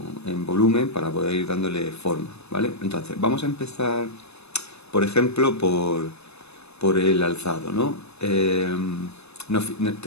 en volumen para poder ir dándole forma, ¿vale? Entonces, vamos a empezar, por ejemplo, por el alzado, ¿no?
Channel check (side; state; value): right; late; 0.80 ms